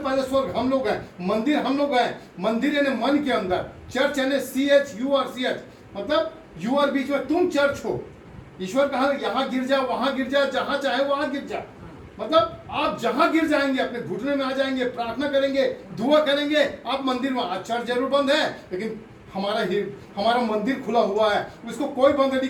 स्वर्ग हम लोग हैं, मंदिर हम लोग हैं। मंदिर यानी मन के अंदर, चर्च यानी CHURCH, मतलब यू आर, बीच में तुम चर्च हो। ईश्वर कहा, यहाँ गिर जा, वहां गिर जा, जहां चाहे वहां गिर जा, मतलब आप जहां गिर जाएंगे, अपने घुटने में आ जाएंगे, प्रार्थना करेंगे, दुआ करेंगे, आप मंदिर में। आज चर्च जरूर बंद है, लेकिन हमारा मंदिर खुला हुआ है, उसको कोई बंद नहीं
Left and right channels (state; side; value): identical; both; correlation 1.00